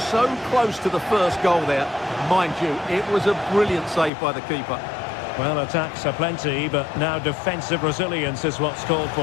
So close to the first goal there. Mind you, it was a brilliant save by the keeper. Well, attacks are plenty, but now defensive resilience is what's called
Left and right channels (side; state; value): right; drops out; at 4.1 s